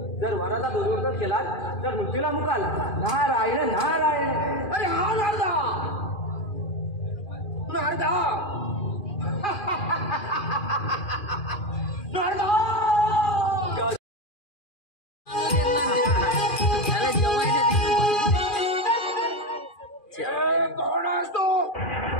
जर वराचा दुर्वर्तन केला तर मृत्यूला मुकाल नारायण नारायण अरे हा नारदा नारदा नारदा कोण असतो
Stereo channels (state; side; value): late; right; 2.4 ms